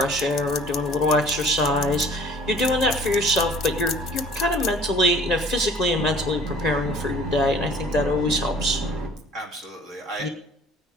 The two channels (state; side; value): normal; both; correlation 0.51